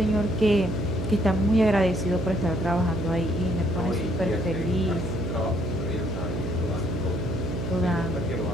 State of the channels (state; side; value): noise; right; hum, 4 dB below the sound